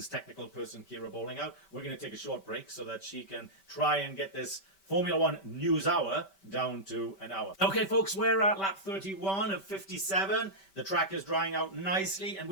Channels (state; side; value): late; right; 5.2 ms